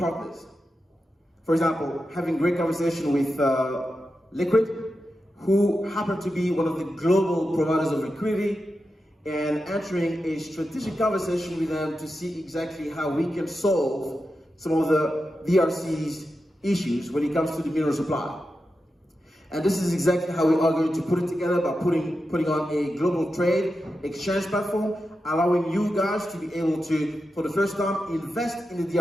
For example, having great conversation with Liquid, who happen to be one of the global providers of liquidity, and entering a strategic conversation with them to see exactly how we can solve some of the DRC's issues when it comes to the mineral supply. And this is exactly how we are going to put it together, by putting on a global trade exchange platform, allowing you guys to be able to, for the first time, invest in the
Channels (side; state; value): both; normal; correlation 0.90